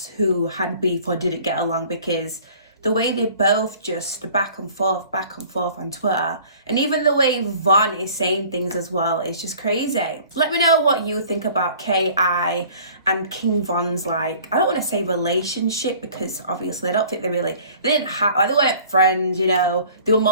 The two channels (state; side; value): inverted; both; correlation -0.50